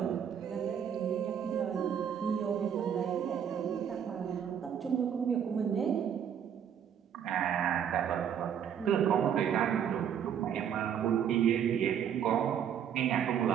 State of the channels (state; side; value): quieter; left; 8.6 dB